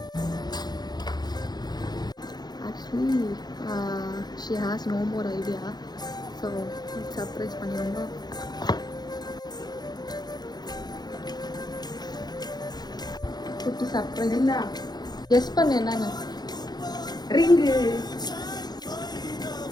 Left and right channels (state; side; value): late; right; 0.20 ms